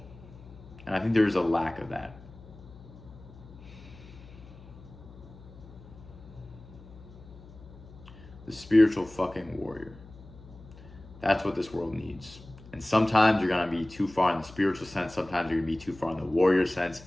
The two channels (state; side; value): noise; left; hum, 19 dB below the sound